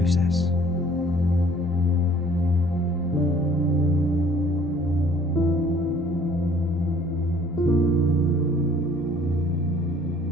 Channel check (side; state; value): both; normal; correlation 0.55